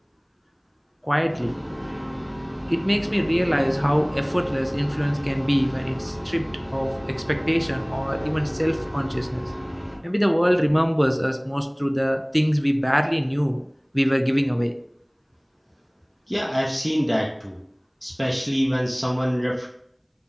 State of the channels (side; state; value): both; identical; correlation 1.00